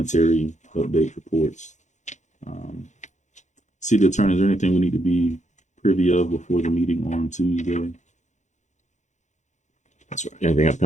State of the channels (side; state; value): right; late; 0.35 ms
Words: update, reports. City attorney, is there anything we need to be privy of before the meeting on Tuesday? That's right. Anything